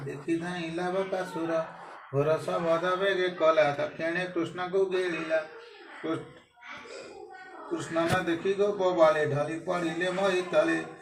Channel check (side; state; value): both; identical; correlation 1.00